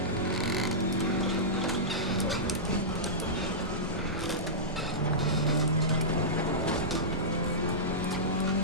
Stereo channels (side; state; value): both; normal; correlation -0.15